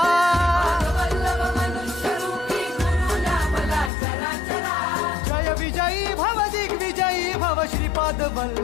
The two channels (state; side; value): drops out; right; at 3.9 s